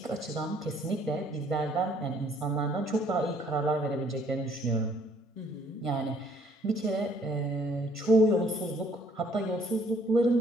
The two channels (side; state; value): both; normal; correlation 0.62